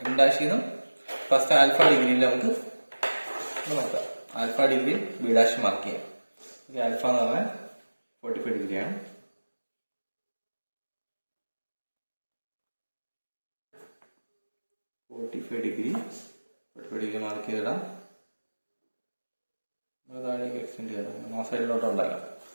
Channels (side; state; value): both; inverted; correlation -1.00